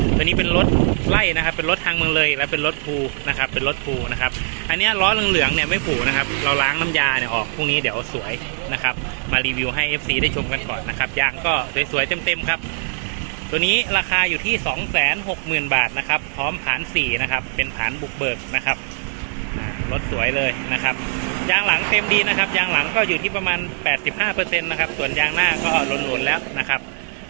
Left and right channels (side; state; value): left; silent; digital silence